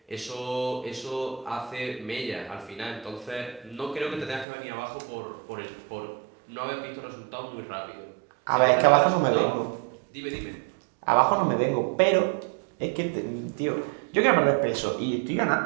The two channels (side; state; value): left; drops out; at 4.5 s